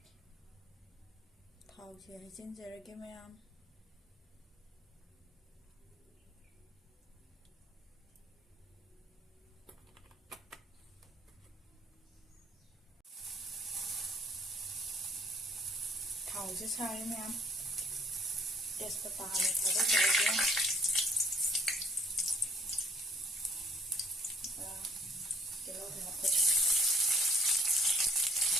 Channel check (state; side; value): normal; both; correlation 0.59